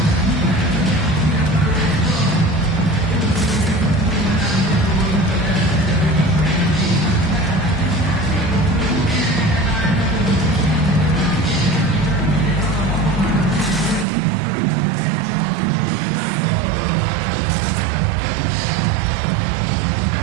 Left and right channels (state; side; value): drops out; left; at 14.1 s